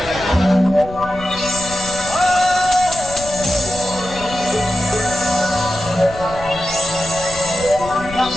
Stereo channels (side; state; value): left; noise; rumble, 14 dB below the sound